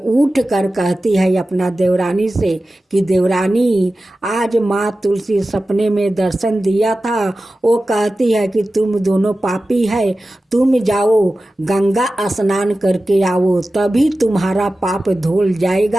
उठ कर कहती है अपना देवरानी से कि देवरानी आज माँ तुलसी सपने में दर्शन दिया था, वो कहती है कि तुम दोनों पापी है, तुम जाओ गंगा स्नान करके आओ, तभी तुम्हारा पाप धुल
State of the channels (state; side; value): normal; both; correlation 0.95